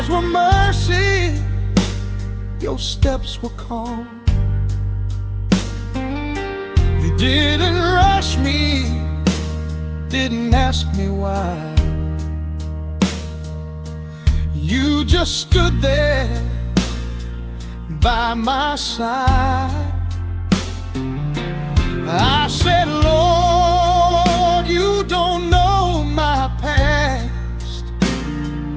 were mercy, your steps were calm. You didn't rush me, didn't ask me why. You just stood there by my side. I said, Lord, you don't know my past.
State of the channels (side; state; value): both; identical; correlation 1.00